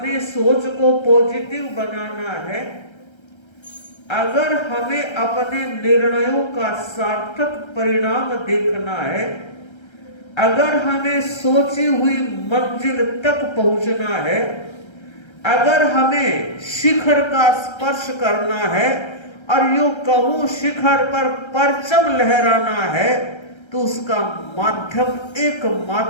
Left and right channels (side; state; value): right; late; 1.3 ms